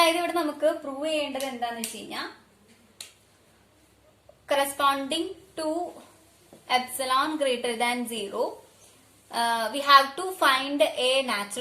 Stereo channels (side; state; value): both; identical; correlation 1.00